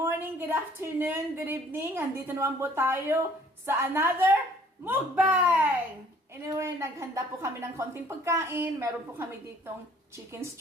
good afternoon, good evening. Andito naman po tayo sa another Mukbang! Anyway, naghanda po kami ng konting pagkain. Meron po kami ditong chicken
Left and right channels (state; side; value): normal; both; correlation 0.57